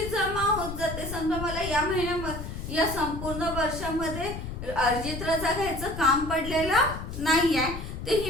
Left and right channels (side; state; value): left; noise; rumble, 8 dB below the sound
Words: जमा होत जाते. समजा मला या महिन्यामध्ये या संपूर्ण वर्षामध्ये अर्जित रजा घ्यायचं काम पडलेलं नाहीये, तर